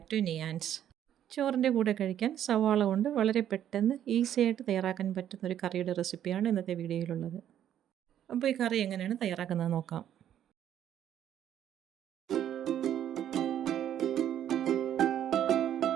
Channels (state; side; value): quieter; left; 10.6 dB